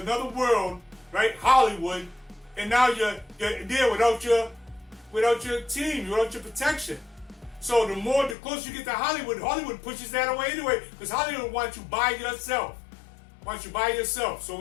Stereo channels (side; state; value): right; drops out; at 8.3 s